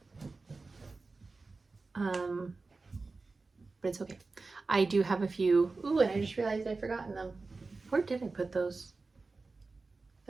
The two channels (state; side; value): quieter; left; 3.8 dB